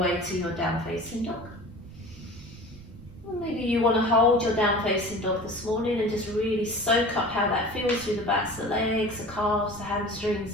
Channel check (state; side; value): noise; right; rumble, 19 dB below the sound